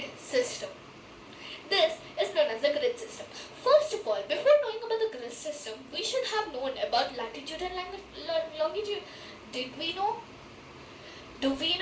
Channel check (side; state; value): both; identical; correlation 1.00